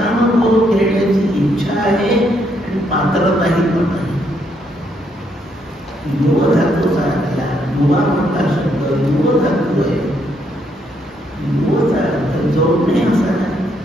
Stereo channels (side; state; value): both; normal; correlation 0.74